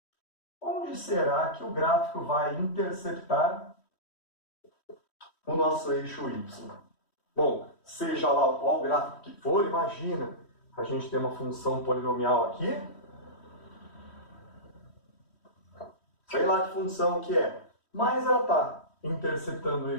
Onde será que o gráfico vai interceptar o nosso eixo y? Bom, seja lá qual gráfico que for, imagina, a gente tem uma função polinomial aqui. Sei lá que função que é. Mas ela está interceptando o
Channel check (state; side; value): late; right; 3.1 ms